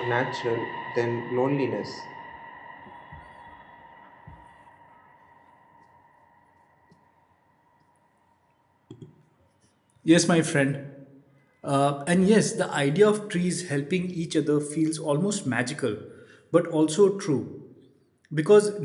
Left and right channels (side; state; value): both; identical; correlation 1.00